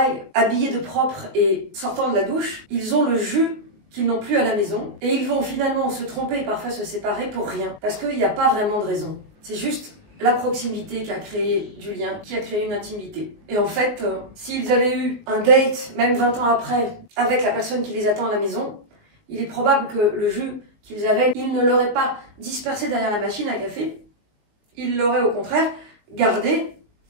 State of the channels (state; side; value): late; left; 19 ms